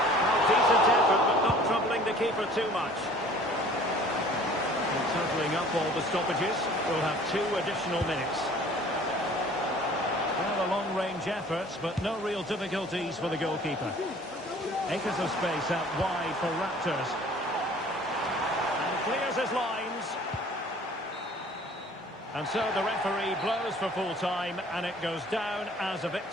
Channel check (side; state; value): both; normal; correlation 0.50